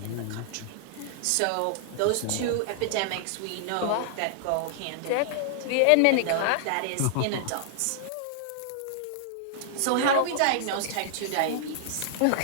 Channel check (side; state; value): both; different; correlation -0.01